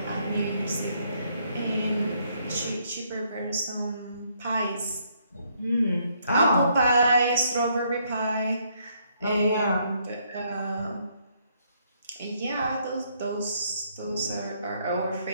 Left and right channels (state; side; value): inverted; both; correlation -0.71